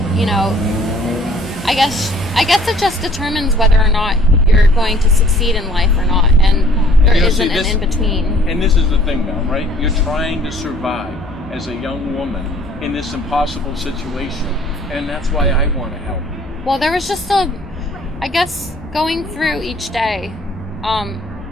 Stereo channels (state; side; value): normal; both; correlation 0.55